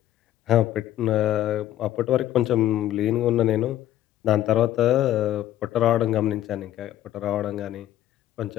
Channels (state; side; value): quieter; right; 12.9 dB